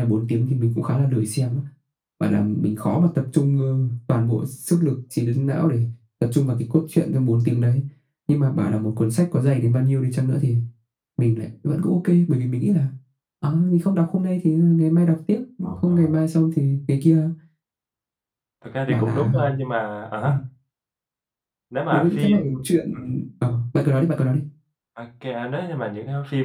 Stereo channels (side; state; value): both; identical; correlation 1.00